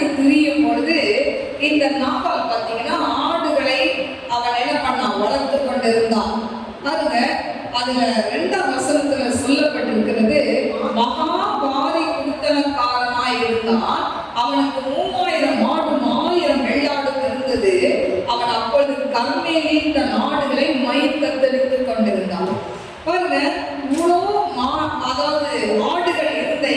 திரியும் பொழுது இந்த நாபால் பார்த்தீங்கன்னா ஆடுகளை அவன் என்ன பண்ணான்? வளர்த்து கொண்டிருந்தான். பாருங்க, அதுல 2ஆம் வசனத்துல சொல்லப்பட்டிருக்கிறது, மகாபாரி குடுத்தனக்காரனாய் இருந்தான், அவனுக்கு 3000 ஆடு 1000 வெள்ளாடு இருந்தது. அவன் அப்பொழுது கர்மேலின் தன் ஆடுகளை மயிர் கத்தரித்துக் கொண்டிருந்தான். பாருங்க, இவ்வளோ அதாவது ஆடுகள் இருந்த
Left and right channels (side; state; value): both; identical; correlation 1.00